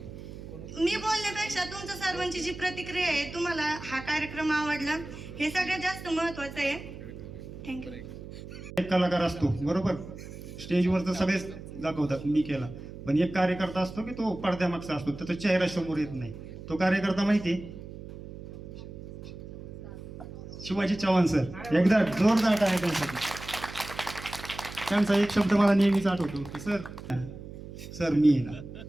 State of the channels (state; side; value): noise; right; hum, 13 dB below the sound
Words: मी बोलण्यापेक्षा तुमच्या सर्वांची जी प्रतिक्रिया आहे, तुम्हाला हा कार्यक्रम आवडला हे सगळ्यात जास्त महत्वाचं आहे. थँक्यू. एक कलाकार असतो बरोबर, स्टेजवर तर सगळेच दाखवतात मी केला, पण एक कार्यकर्ता असतो की तो पडद्यामागचा असतो, त्याचा चेहरा समोर येत नाही. तो कार्यकर्ता माहिती शिवाजी चव्हाण सर. एकदा जोरदार टाळ्या त्यांच्यासाठी. त्यांचा एक शब्द मला नेहमीच आठवतो की सर मी आहे ना.